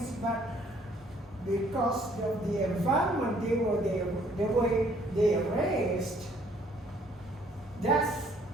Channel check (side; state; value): both; normal; correlation 0.62